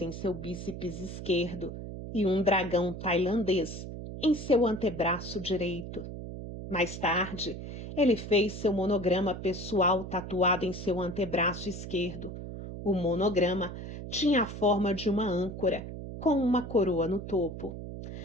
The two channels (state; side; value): noise; right; hum, 9 dB below the sound